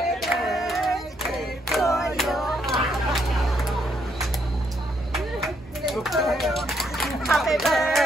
birthday to you. Happy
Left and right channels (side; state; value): both; normal; correlation 0.74